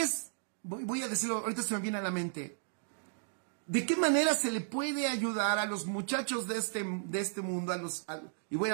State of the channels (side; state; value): left; silent; digital silence